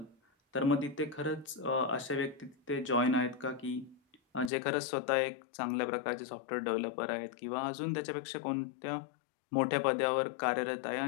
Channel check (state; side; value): drops out; right; at 4.5 s